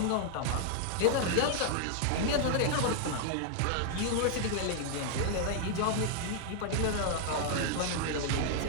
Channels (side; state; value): both; different; correlation 0.00